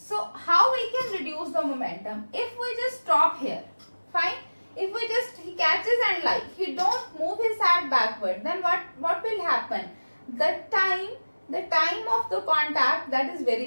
how we can reduce the momentum? If we just stop here, fine. if we just he catches and like he don't move his hand backward, then what will happen? The time of the contact, that is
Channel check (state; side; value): inverted; both; correlation -1.00